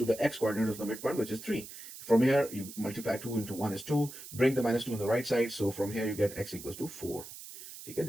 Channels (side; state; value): right; noise; hiss, 13 dB below the sound